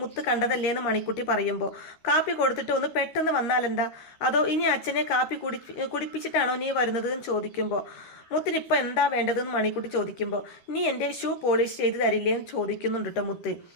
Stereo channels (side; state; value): right; late; 13 ms